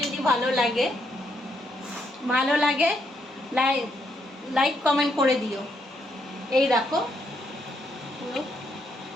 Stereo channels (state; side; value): normal; both; correlation 0.76